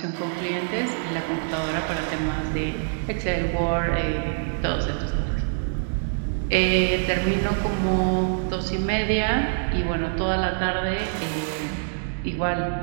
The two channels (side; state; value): left; silent; digital silence